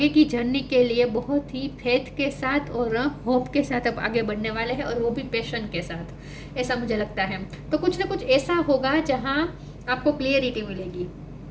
की जर्नी के लिए बहुत ही फेथ के साथ और होप के साथ अब आगे बढ़ने वाले हैं, और वो भी पैशन के साथ, ऐसा मुझे लगता है। तो कुछ ना कुछ ऐसा होगा जहां आपको क्लियरिटी मिलेगी,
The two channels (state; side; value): identical; both; correlation 1.00